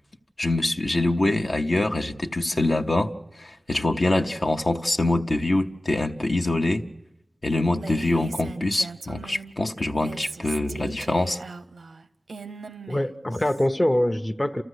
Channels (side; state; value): both; normal; correlation 0.96